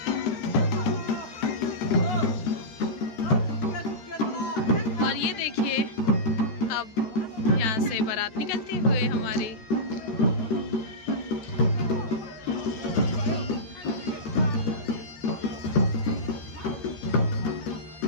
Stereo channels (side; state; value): right; late; 14 ms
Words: और ये देखिए, अब यहाँ से बारात निकलती हुए हमारी।